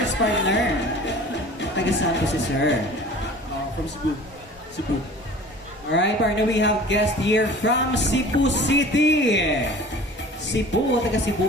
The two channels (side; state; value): both; normal; correlation 0.43